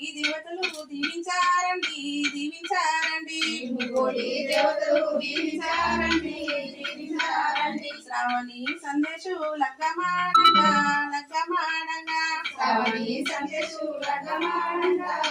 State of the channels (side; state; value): both; identical; correlation 1.00